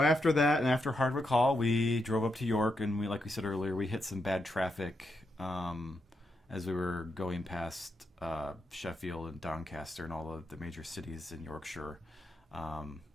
that, and after Hardwick Hall, we drove up to York, and like we said earlier, we hit some bad traffic as we were going past Sheffield and Doncaster and all the major cities in Yorkshire.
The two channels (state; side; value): normal; both; correlation 0.83